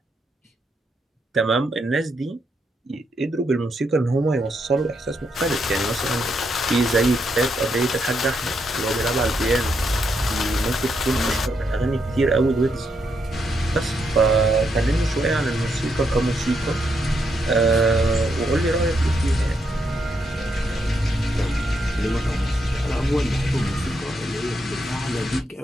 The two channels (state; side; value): normal; both; correlation 0.79